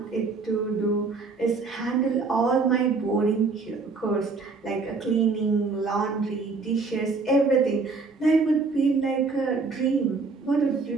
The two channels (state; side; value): quieter; left; 4.2 dB